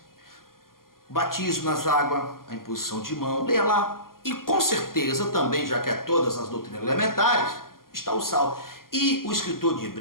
Batismo nas águas, a imposição de mão, leia lá. E com certeza também, já que é todas as doutrinas elementares, está o sal. E o escritor de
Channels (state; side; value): late; right; 0.92 ms